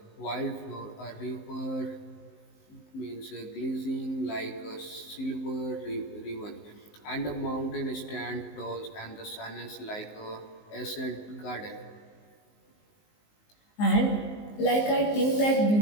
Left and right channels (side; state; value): right; late; 19 ms